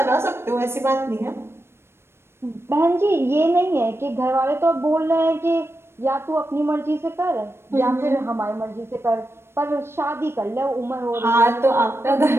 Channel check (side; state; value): left; late; 0.12 ms